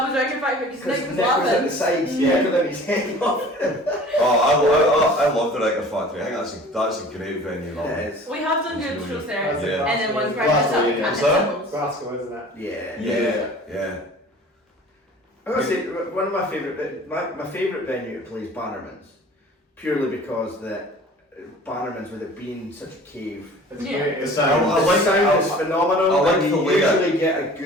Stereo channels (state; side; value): normal; both; correlation 0.45